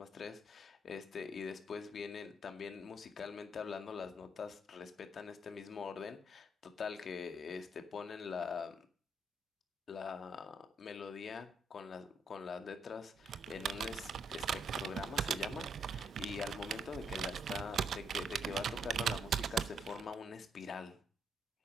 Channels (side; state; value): both; normal; correlation 0.73